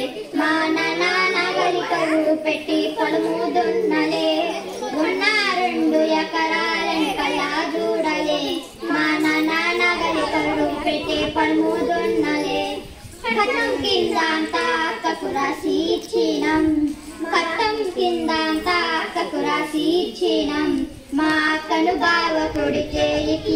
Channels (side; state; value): both; identical; correlation 1.00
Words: మా నాన్న నగలికలు పెట్టి పొలము దున్నలే ఉన్న 2 ఎకరాలను కలా చూడలే మా నాన్న నగలికలు పెట్టి పొలము దున్నలే కట్టం కింద అంతా అక్కకు రాసి ఇచ్చినం కట్టం కింద అంతా అక్కకు రాసి ఇచ్చినం మా అక్కను బావ కొడితే ఎక్కి